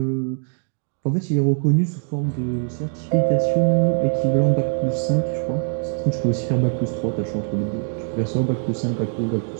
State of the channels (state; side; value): silent; left; 55 dB below the other